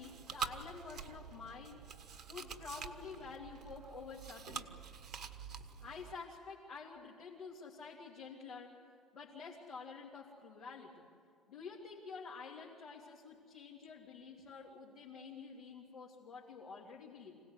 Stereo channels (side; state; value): both; normal; correlation 0.43